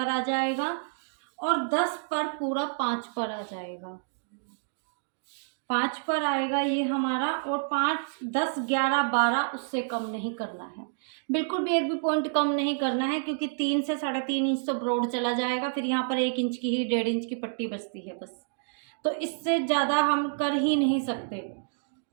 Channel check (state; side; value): silent; left; digital silence